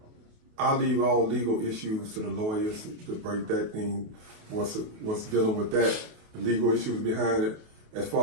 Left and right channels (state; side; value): late; left; 28 ms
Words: I leave all legal issues to the lawyers to break that thing, what's dealing with that, the legal issues behind it. As